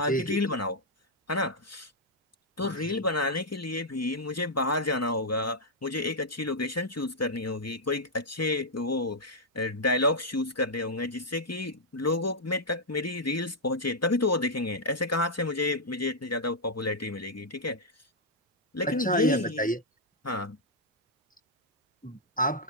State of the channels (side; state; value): both; normal; correlation -0.05